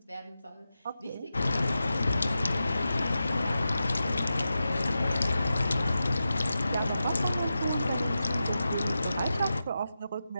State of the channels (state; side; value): inverted; both; correlation -0.91